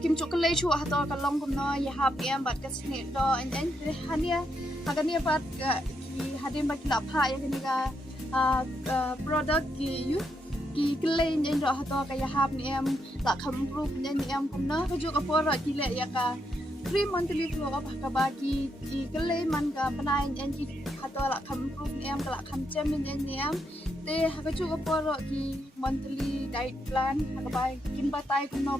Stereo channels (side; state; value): both; normal; correlation 0.80